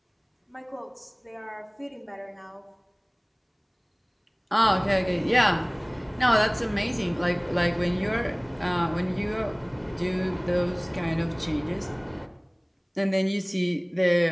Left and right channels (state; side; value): identical; both; correlation 1.00